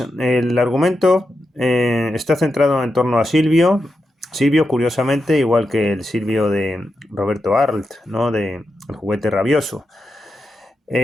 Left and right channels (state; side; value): normal; both; correlation 0.88